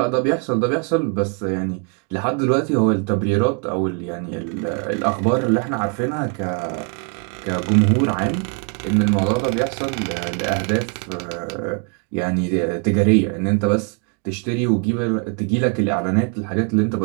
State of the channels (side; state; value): left; quieter; 39.8 dB